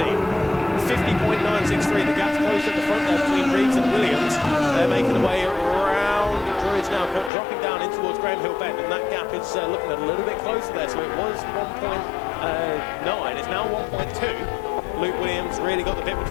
50.963, the gap's closed at the front there between Reeves and Williams. They're making their way around Druids now, dropping down in towards Graham Hill Bend, and that gap is looking a little bit closer there. So it was 1.9, it's now 1.2. Luke Williams really got the bit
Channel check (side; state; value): right; drops out; at 7.3 s